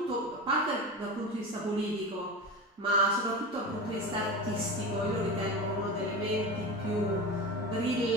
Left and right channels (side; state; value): both; normal; correlation 0.26